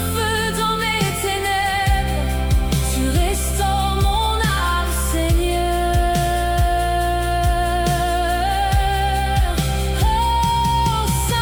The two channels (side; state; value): both; identical; correlation 1.00